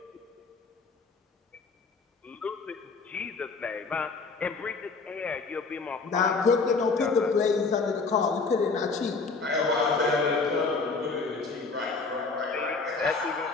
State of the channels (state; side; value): quieter; right; 4.3 dB